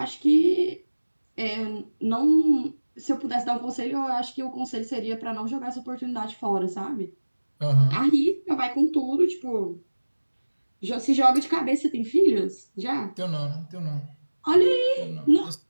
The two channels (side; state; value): both; inverted; correlation -1.00